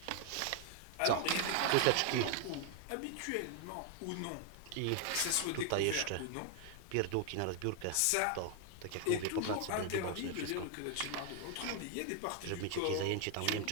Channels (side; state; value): both; different; correlation 0.00